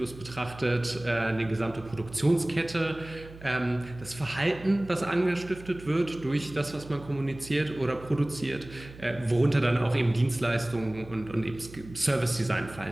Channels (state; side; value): noise; right; hum, 17 dB below the sound